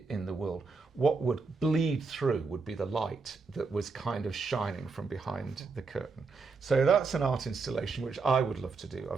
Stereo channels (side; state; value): left; quieter; 4.4 dB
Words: the world, what would bleed through would be the light that was kind of shining from behind the curtain. So that's an art installation which I would love to do.